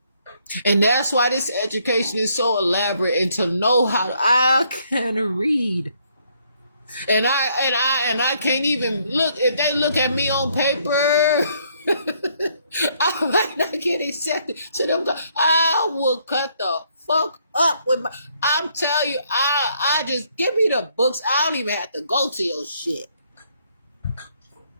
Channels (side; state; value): both; inverted; correlation -0.69